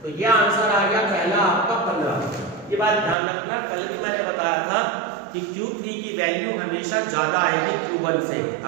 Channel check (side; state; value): left; drops out; at 3.2 s